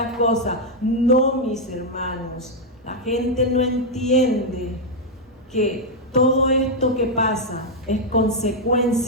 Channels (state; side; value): normal; both; correlation -0.01